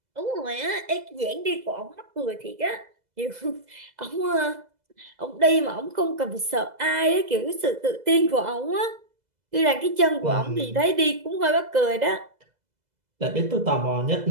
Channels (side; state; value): left; late; 2.0 ms